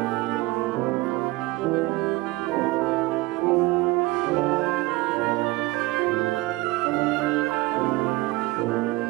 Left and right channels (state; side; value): quieter; left; 20.7 dB